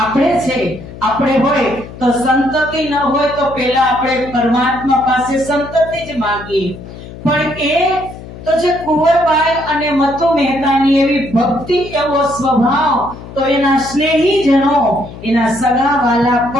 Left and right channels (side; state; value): left; noise; hum, 14 dB below the sound